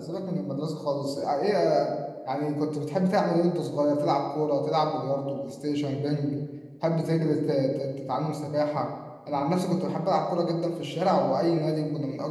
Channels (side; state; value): both; identical; correlation 1.00